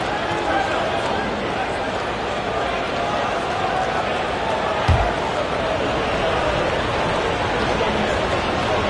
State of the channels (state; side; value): identical; both; correlation 1.00